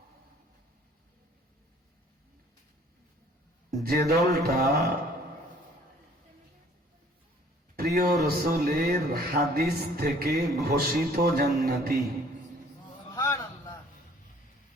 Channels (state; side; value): normal; both; correlation 0.56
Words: যে দলটা প্রিয় রসুলের হাদিস থেকে ঘোষিত জান্নাতি।